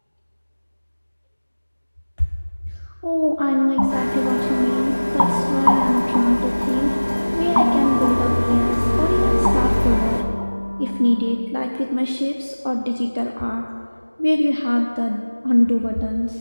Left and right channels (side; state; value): both; inverted; correlation -1.00